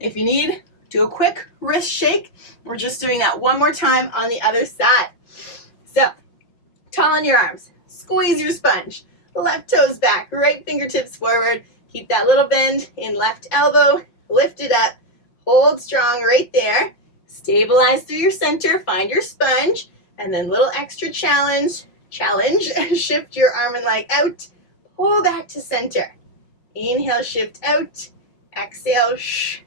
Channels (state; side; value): late; right; 5.8 ms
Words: you need, do a quick wrist shake. We're just doing that 1 more time on the other side. So, tall in your arms, squeeze your sponge, left toes back, right fingertips forward. Keep that little bend in left elbow, lift it up. Hold strong right there. Stabilize through your center. Find your sponge. And then little extra challenge. Shift your arm and leg out. Pull back to center. Inhale, shift out. Exhale,